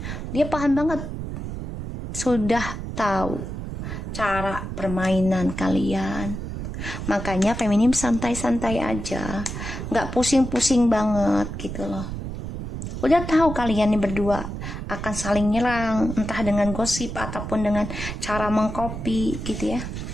Dia paham banget, sudah tahu cara permainan kalian. Makanya feminim santai-santai aja, nggak pusing-pusing banget gitu loh. Udah tahu kalian nih berdua akan saling nyerang, entah dengan gosip ataupun dengan cara mengcopy gitu ya.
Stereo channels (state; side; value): noise; right; rumble, 6 dB below the sound